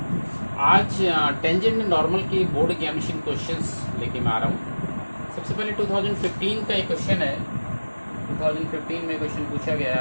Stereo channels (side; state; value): both; inverted; correlation -1.00